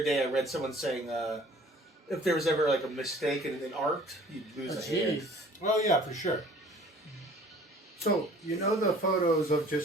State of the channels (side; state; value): both; normal; correlation 0.51